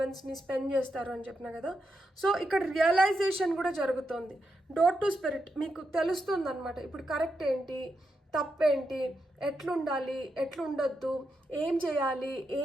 స్పెండ్ చేస్తారు అని చెప్పిన కదా. సో ఇక్కడ రియలైజేషన్ కూడా జరుగుతుంది. డోర్ టు స్పిరిట్ మీకు తెలుస్తుంది అనమాట. ఇప్పుడు కరెక్ట్ ఏంటి, తప్పేంటి, ఎట్లుండాలి, ఎట్లుండొద్దు, ఏం చేయాలి,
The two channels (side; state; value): both; normal; correlation 0.85